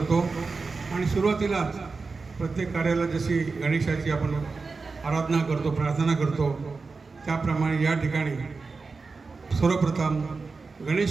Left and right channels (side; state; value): left; quieter; 4.3 dB